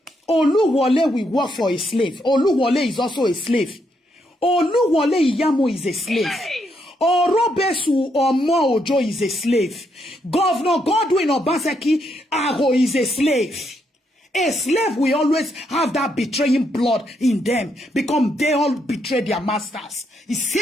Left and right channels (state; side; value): normal; both; correlation 0.77